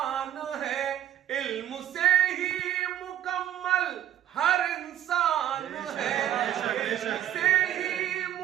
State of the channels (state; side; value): quieter; left; 11.5 dB